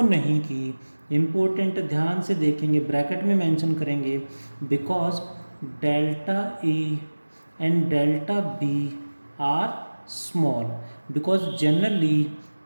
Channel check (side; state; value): both; inverted; correlation -1.00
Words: नहीं की. इम्पोर्टेंट, ध्यान से देखेंगे, ब्रैकेट में मेंशन करेंगे. Because delta A and delta B are small. Because generally